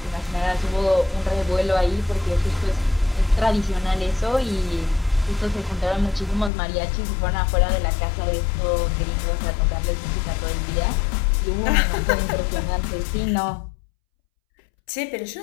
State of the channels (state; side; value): drops out; right; at 6.5 s